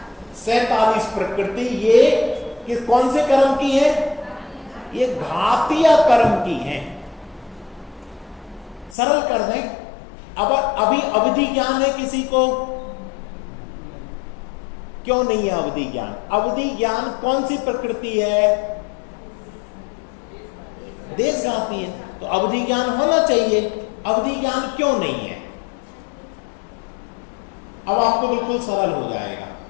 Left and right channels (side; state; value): right; drops out; at 9.0 s